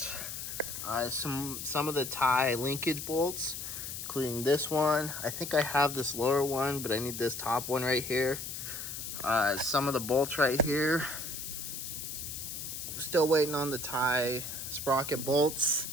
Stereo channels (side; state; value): left; noise; hiss, 7 dB below the sound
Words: some of the tie linkage bolts, including this one. I think I have this lower one, but I need this top one right here. Some of the bolts right here. Still waiting on the tie sprocket bolts.